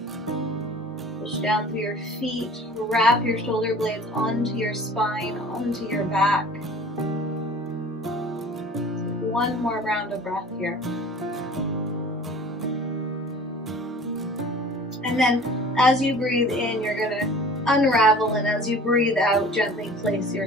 Down through your feet, wrap your shoulder blades onto your spine, onto your back. Take one more round of breath here. And then as you breathe in, you're going to unravel, and as you breathe out, gently place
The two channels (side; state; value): both; normal; correlation 0.44